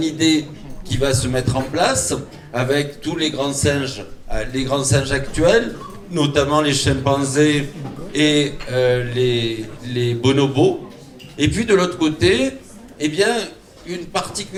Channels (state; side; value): identical; both; correlation 1.00